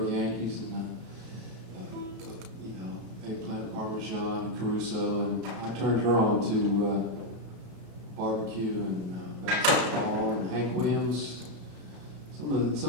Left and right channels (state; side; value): late; left; 33 ms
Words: Yankees and eggplant parmesan and Caruso, and I turned her on to barbecue and basketball and Hank Williams, some of